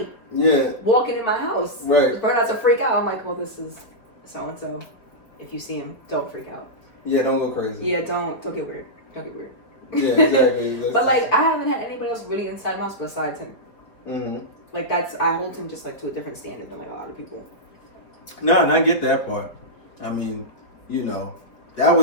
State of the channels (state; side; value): late; right; 4.8 ms